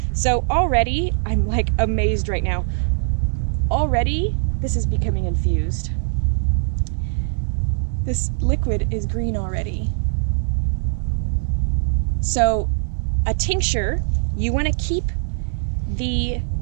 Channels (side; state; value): left; silent; digital silence